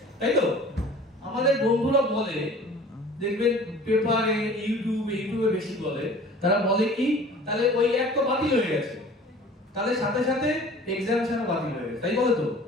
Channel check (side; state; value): both; normal; correlation 0.46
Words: তাই তো? আমাদের বন্ধুরা বলে, দেখবেন পেপারে ইউটিউবে বেশি বলে, তারা বলে কি তাহলে ওই অ্যাক্ট তো বাতিল হয়ে গেছে, তাহলে সাথে সাথে এক্সামশনও বাতিল হয়ে গেছে, তাই বলে তো?